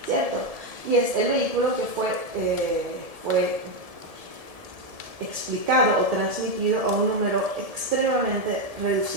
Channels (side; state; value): left; late; 1.7 ms